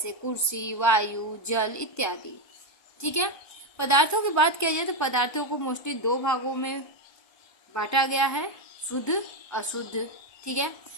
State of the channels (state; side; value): late; right; 1.2 ms